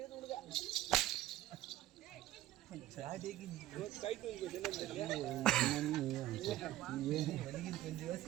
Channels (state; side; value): quieter; left; 14.4 dB